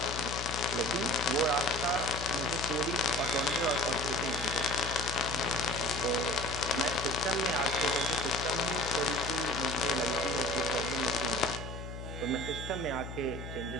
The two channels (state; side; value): noise; left; hum, 9 dB below the sound